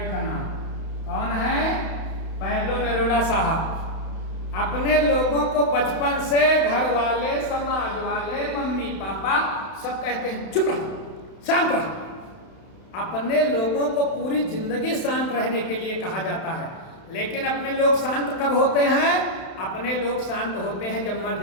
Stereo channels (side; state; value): right; late; 32 ms